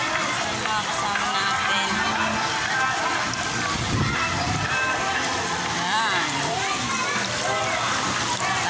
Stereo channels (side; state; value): both; identical; correlation 1.00